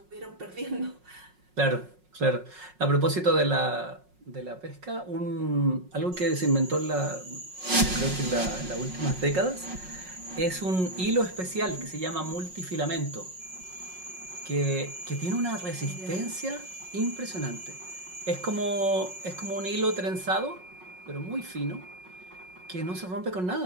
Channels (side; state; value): left; late; 5.5 ms